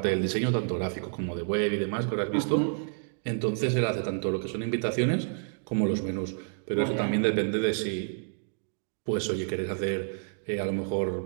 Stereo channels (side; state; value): left; silent; digital silence